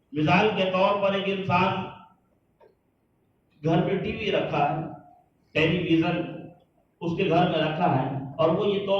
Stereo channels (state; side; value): identical; both; correlation 1.00